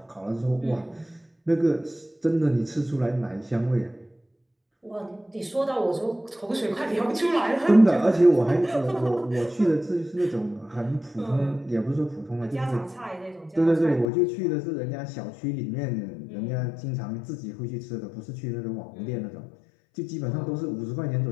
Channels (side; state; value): right; drops out; at 14.1 s